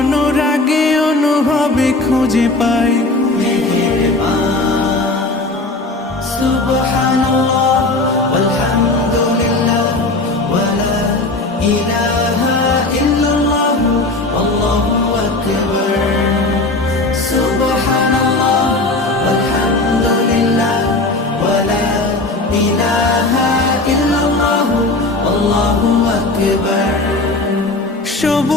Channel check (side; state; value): right; quieter; 3.1 dB